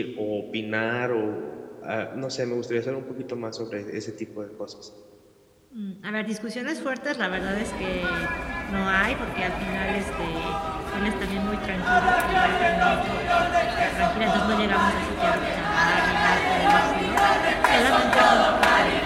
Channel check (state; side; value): identical; both; correlation 1.00